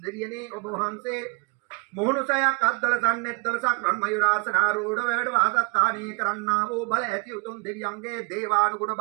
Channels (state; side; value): quieter; left; 35.7 dB